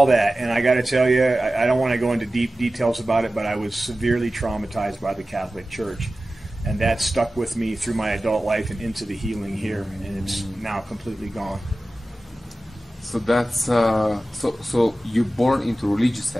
that. And I got to tell you, I don't want to go into deep details about it, but I was severely traumatized by the Catholic Church. And that stuck with me through my adult life and into the healing here. And it's now completely gone. So that's, so you're born into a religious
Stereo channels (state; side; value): normal; both; correlation 0.95